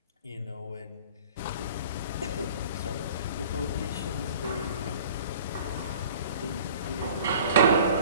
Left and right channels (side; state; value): both; inverted; correlation -0.46